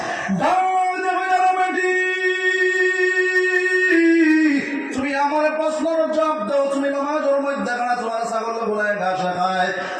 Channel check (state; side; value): identical; both; correlation 1.00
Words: তুমি আমার প্রশ্নের জবাব দাও, তুমি নামাজের মধ্যে খানা তোমার ছাগল গুলায় ঘাস খায়,